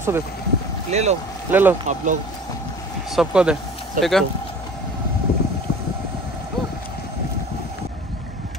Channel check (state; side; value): normal; both; correlation 0.42